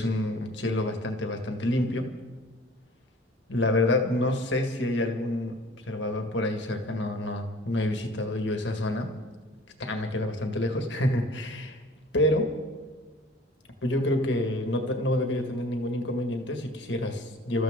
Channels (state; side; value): normal; both; correlation 0.48